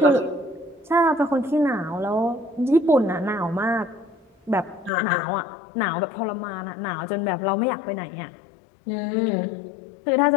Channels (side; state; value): right; drops out; at 4.9 s